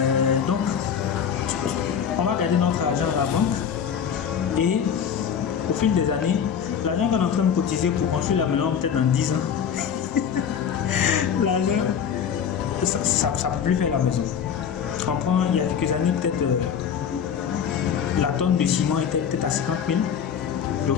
Donc on va garder notre argent à la banque, et au fil des années, l'argent qu'on est en train de cotiser pour construire la maison, peut-être dans 10 ans, l'argent, ça ne peut plus faire la maison. On prend, il y a quelques années, peut-être la tonne de ciment était peut-être à 50 000. J'ai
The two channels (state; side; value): quieter; right; 7.9 dB